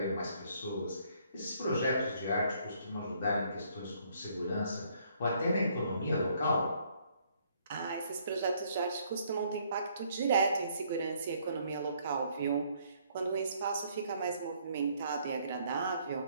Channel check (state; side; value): inverted; both; correlation -0.66